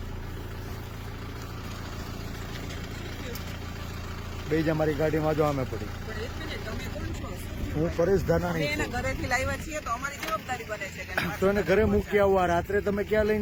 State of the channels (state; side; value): identical; both; correlation 1.00